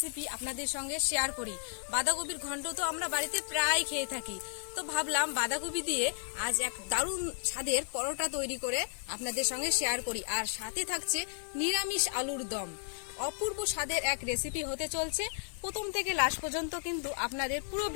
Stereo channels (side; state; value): right; silent; 55 dB below the other